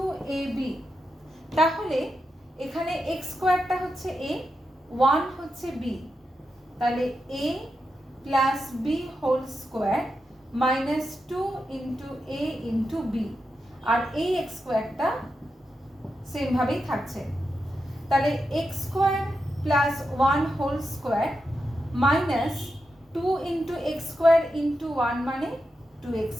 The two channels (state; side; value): normal; both; correlation 0.87